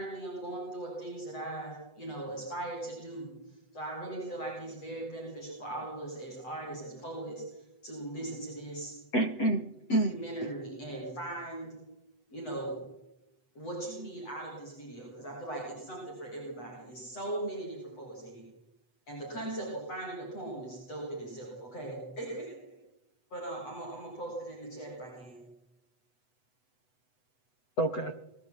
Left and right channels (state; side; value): late; right; 8.0 ms